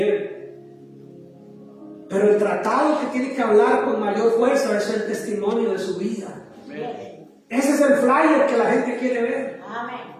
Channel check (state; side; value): identical; both; correlation 1.00